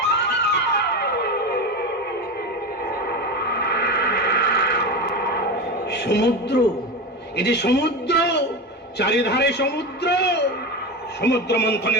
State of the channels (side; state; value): both; normal; correlation 0.22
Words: সমুদ্র, এটি সমুদ্র, চারিধারে সমুদ্র। সমুদ্র মন্থনে